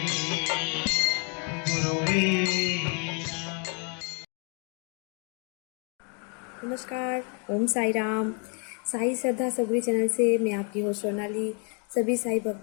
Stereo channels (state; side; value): quieter; right; 38.4 dB